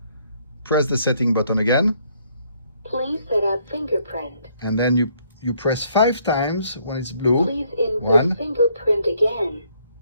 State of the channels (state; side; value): inverted; both; correlation -0.68